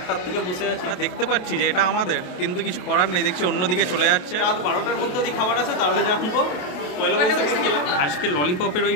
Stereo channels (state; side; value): late; right; 28 ms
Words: থেকে বসে আছে। দেখতে পাচ্ছি যে এটা আমাদের, কিন্তু কিছু করার নেই, দেখছি অন্যদিকে চলে যাচ্ছে। রাত 12টার মধ্যে যদি খাবার আছে তাহলে জানবো। পয়লা বৈশাখে খেলাম। আজকে ললিপপের ওই